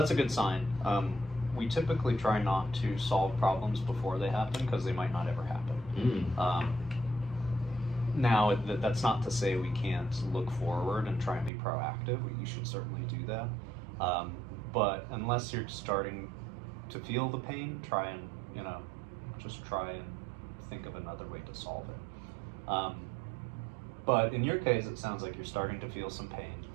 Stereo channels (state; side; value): drops out; left; at 11.5 s